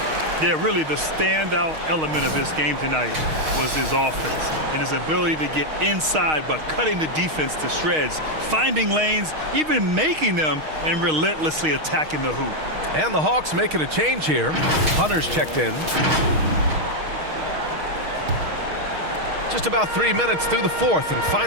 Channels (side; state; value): left; late; 6.4 ms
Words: Yeah, really the standout element of this game tonight was his offense and his ability to get inside but cutting the defense to shreds, finding lanes, even making them, and relentlessly attacking the hoop. And the Hawks making a change here. Hunter's checked in. Just about 3 minutes through the fourth and